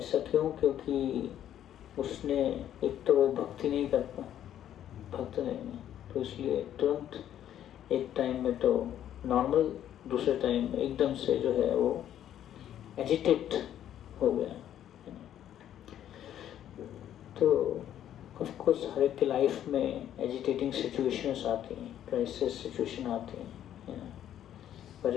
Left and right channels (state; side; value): quieter; right; 10.9 dB